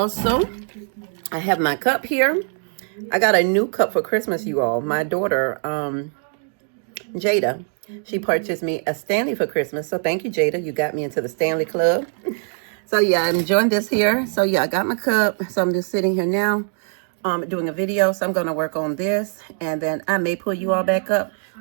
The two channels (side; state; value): left; silent; 56 dB below the other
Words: have my cup here. I got a new cup for Christmas, you all. My daughter, Jada, she purchased me a Stanley for Christmas. So thank you, Jada. You got me into the Stanley Club. So yeah, I'm enjoying this here. So yeah, I got my cup. So I'm just sitting here now doing a video. So I'm going to work on this. And then I may pull you all back up.